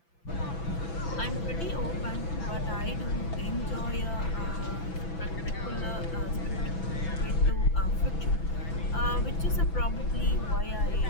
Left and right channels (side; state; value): right; late; 5.8 ms